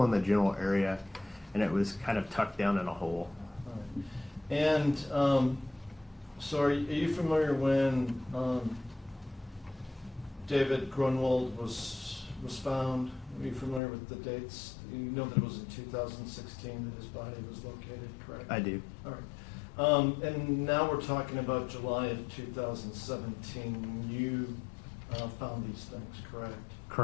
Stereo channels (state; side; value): drops out; right; at 13.8 s